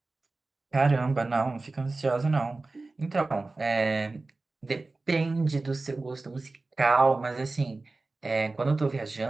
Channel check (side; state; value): left; quieter; 3.4 dB